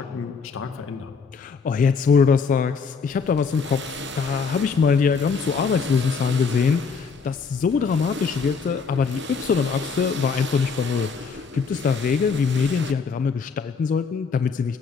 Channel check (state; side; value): quieter; right; 5.3 dB